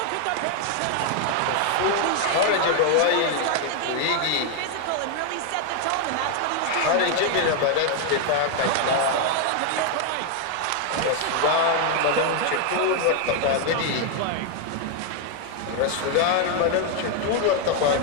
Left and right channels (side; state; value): both; different; correlation 0.00